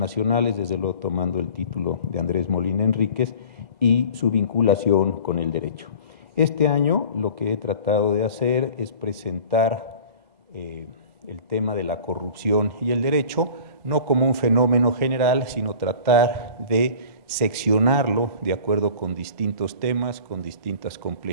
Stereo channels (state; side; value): late; right; 2.0 ms